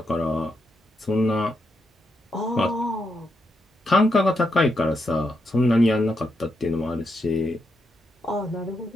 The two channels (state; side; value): normal; both; correlation 0.82